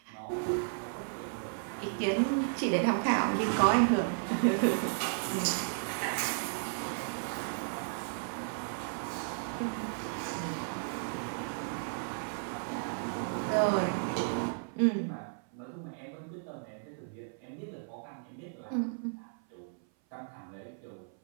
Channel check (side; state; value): left; silent; 55 dB below the other